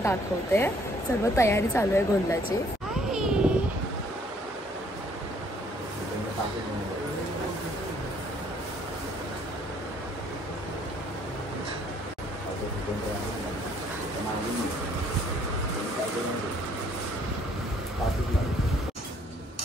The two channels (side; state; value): both; normal; correlation 0.63